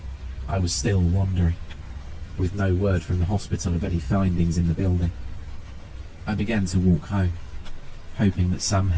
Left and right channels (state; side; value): identical; both; correlation 1.00